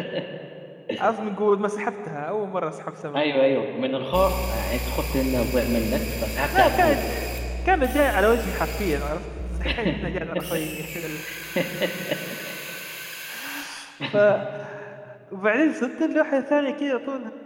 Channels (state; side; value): identical; both; correlation 1.00